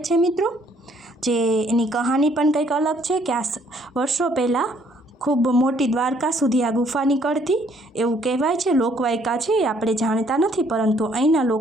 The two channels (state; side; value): normal; both; correlation 0.65